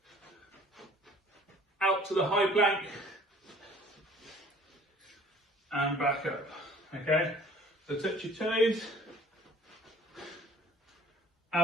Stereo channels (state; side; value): normal; both; correlation 0.52